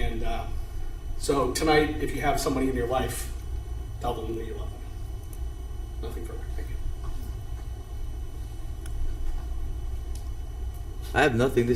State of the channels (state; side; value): identical; both; correlation 1.00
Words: so tonight, if you have somebody in your life, tell them that you love them. Nothing further. Thank you. I have nothing